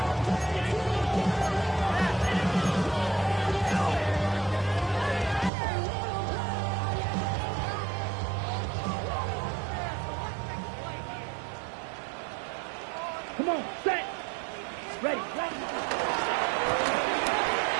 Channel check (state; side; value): drops out; left; at 5.5 s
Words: Come on, set. Ready.